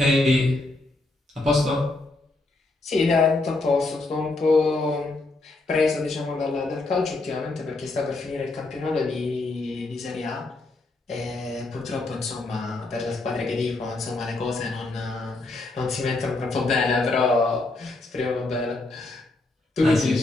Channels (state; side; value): quieter; right; 3.1 dB